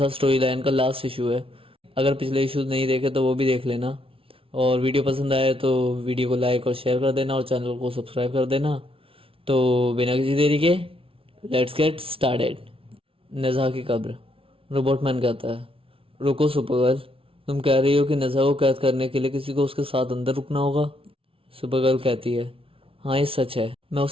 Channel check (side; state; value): left; late; 0.26 ms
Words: story line का लास्ट इशू है। अगर पिछले इशूज नहीं देखे तो वो भी देख लेना, और वीडियो पसंद आए तो वीडियो को लाइक और शेयर कर देना और चैनल को सब्सक्राइब कर देना। तो बिना किसी देरी के लेट्स गेट स्टार्टेड। नेजा की कब्र। रोबोटमैन कहता है, रुको सुपरगर्ल, तुम कह रही हो कि नेजा को कैद करने के लिए किसी को उसके साथ अंदर रुकना होगा? सुपरगर्ल कहती है, हाँ ये सच है, मैं